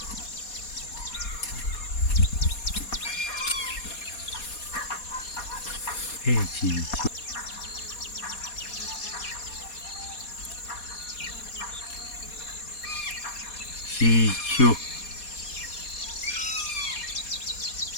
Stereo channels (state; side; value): late; right; 4.2 ms